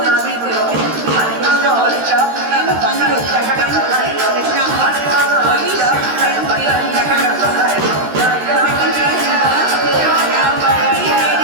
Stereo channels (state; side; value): late; left; 13 ms